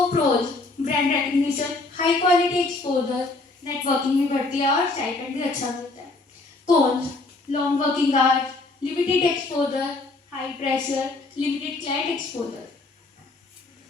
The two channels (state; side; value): quieter; right; 3.3 dB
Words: pros, brand recognition, high quality exposure, networking भी बढ़ती है और स्टाइपेंड भी अच्छा मिलता है. Cons, long working hours, limited exposure, high pressure, limited client exposure.